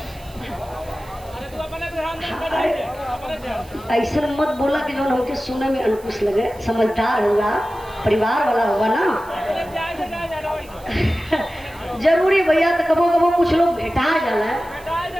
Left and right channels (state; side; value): noise; right; hiss, 24 dB below the sound